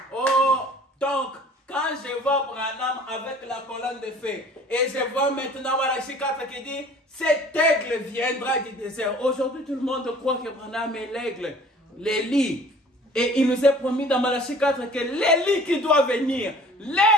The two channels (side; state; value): both; normal; correlation 0.50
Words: Oh, donc, quand je vois Branham avec la colonne de feu, et je vois maintenant Malachie 4 qui dit, cet aigle viendra du désert. Aujourd'hui, tout le monde croit que Branham est l'aigle, l'Élie. Et il nous est promis dans Malachie 4 que l'Élie qui doit venir,